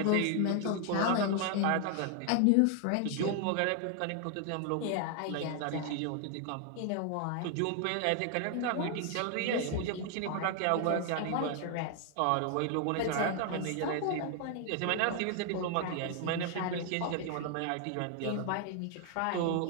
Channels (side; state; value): both; different; correlation 0.00